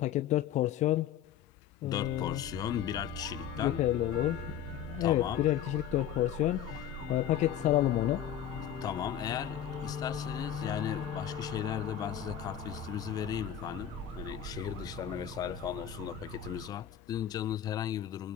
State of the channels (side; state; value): right; quieter; 10.2 dB